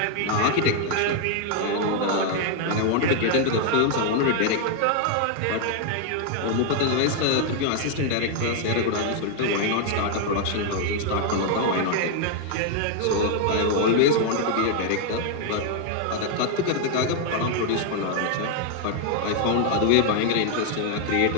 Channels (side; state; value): both; different; correlation 0.00